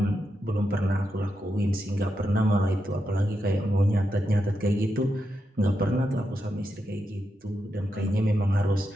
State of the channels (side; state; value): both; normal; correlation 0.85